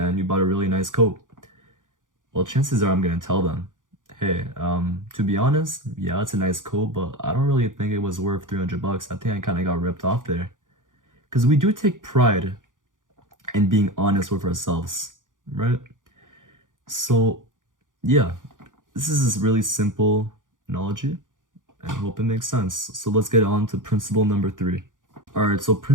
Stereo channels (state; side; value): late; left; 0.88 ms